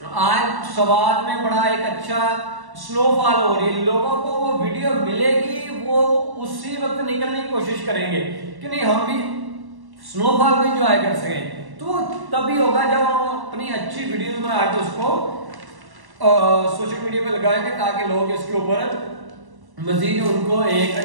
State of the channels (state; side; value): late; left; 1.1 ms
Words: सवाद में बड़ा एक अच्छा स्नोफॉल हो रही है, लोगों को वो वीडियो मिलेगी, वो उसी वक्त निकलने की कोशिश करेंगे कि नहीं हम भी स्नोफॉल को एंजॉय कर सकें। तो तभी होगा जब हम अपनी अच्छी वीडियोस बना के उसको सोशल मीडिया पे लगाएंगे ताकि लोग इसके ऊपर मजीद उनको एक